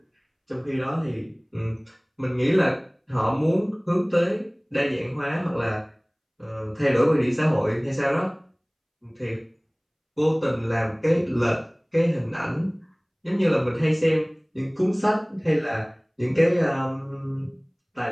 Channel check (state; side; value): identical; both; correlation 1.00